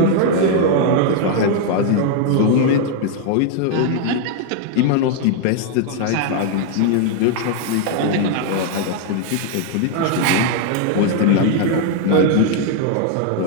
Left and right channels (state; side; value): different; both; correlation 0.00